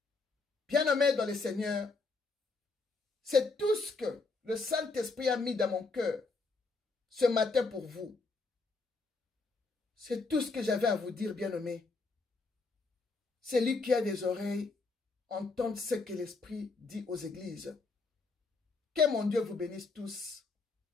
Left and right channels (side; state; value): right; quieter; 3.9 dB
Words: Bien-aimé dans le Seigneur, c'est tout ce que le Saint-Esprit a mis dans mon cœur ce matin pour vous. C'est tout ce que j'avais à vous dire, bien-aimé. Celui qui a des oreilles, entende ce que l'Esprit dit aux églises. Que mon Dieu vous bénisse tous.